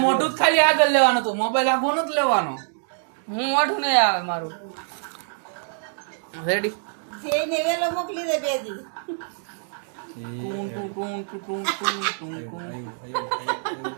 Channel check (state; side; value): silent; left; digital silence